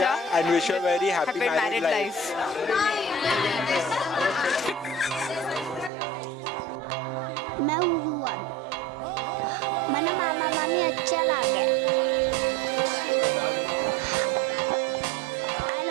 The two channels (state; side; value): drops out; left; at 5.9 s